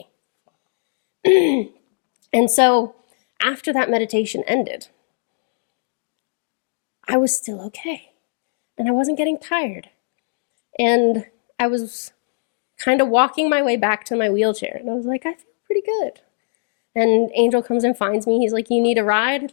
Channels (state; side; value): silent; right; digital silence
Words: And so after that meditation ended, I was still okay. And I wasn't getting tired. And I was kind of walking my way back to my wheelchair. And I was like, I feel pretty good. And Angel comes and finds me. He's like, "You need a ride,